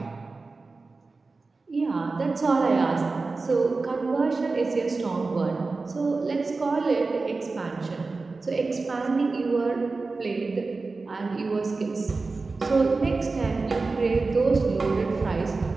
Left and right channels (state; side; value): quieter; left; 3.9 dB